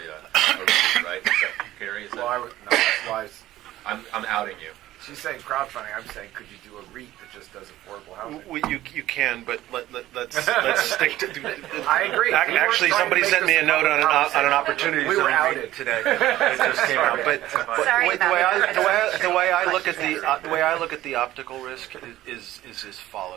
a REIT, right? Is that, Gary, is that? I'm outing you. She's saying crowdfunding. I'm saying, could you do a REIT that just does affordable housing? Well, you can, but let's stick to. I agree. Actually, somebody sent me a note on an opportunity. We were outed today. It just came out. But Sorry the way I look at Question. the way I look at the optical risk is as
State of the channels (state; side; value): quieter; left; 14.9 dB